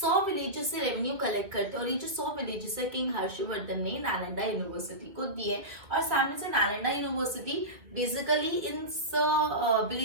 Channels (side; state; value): left; late; 2.0 ms